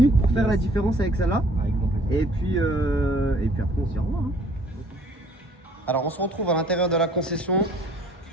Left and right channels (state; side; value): normal; both; correlation 0.57